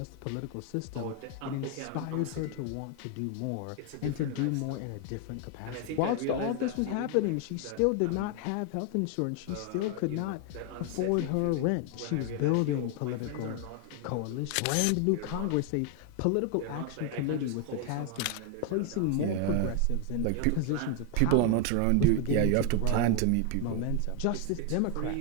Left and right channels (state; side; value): different; both; correlation 0.01